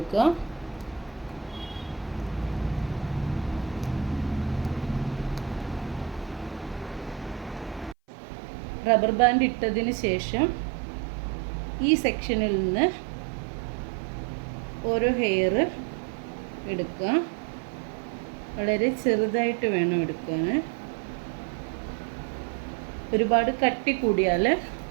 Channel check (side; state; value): left; drops out; at 8.0 s